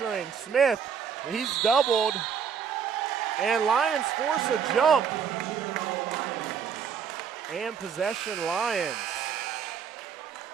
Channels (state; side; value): quieter; left; 7.1 dB